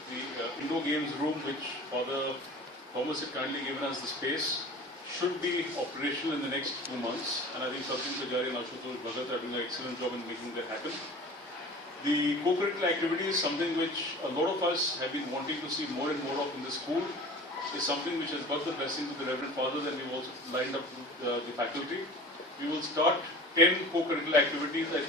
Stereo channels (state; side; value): normal; both; correlation 0.40